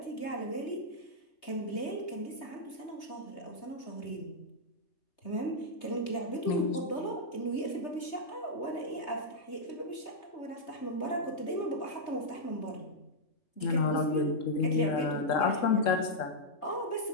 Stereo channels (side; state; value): right; late; 3.3 ms